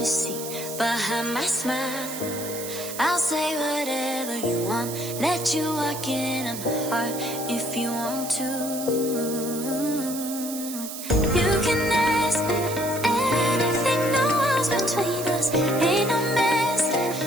see behind my smile. I'll say whatever you want, let you walk into my heart if you want to. You can ask me anything, no walls between us, ain't no mess.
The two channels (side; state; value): right; noise; hiss, 9 dB below the sound